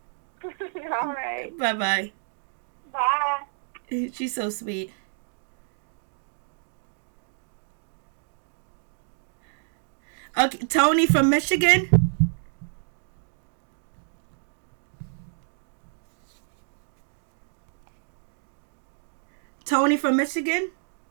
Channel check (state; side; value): silent; left; digital silence